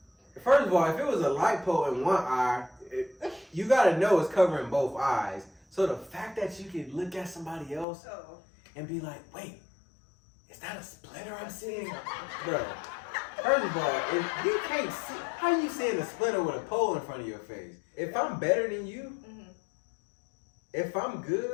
First of all, if it was a light pole in one eye, you gotta know it's covering both eyes. So the fact that you can look at somebody else and be like, wait, is that a splitter I'm seeing? Bro, first of all, if you can't see, how you seeing a splitter with a pole in front of your face? If I'm better than you, if I'm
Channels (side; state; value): right; drops out; at 7.9 s